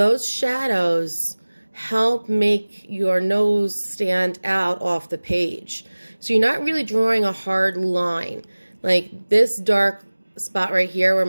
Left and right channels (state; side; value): inverted; both; correlation -1.00